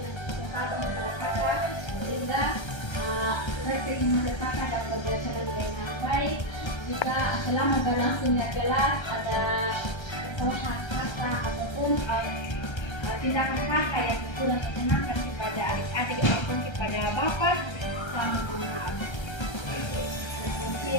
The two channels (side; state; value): right; late; 1.3 ms